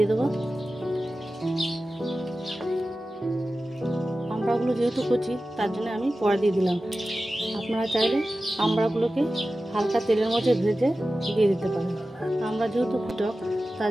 দেবো। আমড়াগুলো যেহেতু কচি তার জন্য আমি পরে দিয়ে দিলাম। আপনারা চাইলে আমড়াগুলোকে হালকা তেলের মধ্যে ভেজে দিয়ে দিতে পারেন। আমড়া যেহেতু টক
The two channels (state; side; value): normal; both; correlation 0.95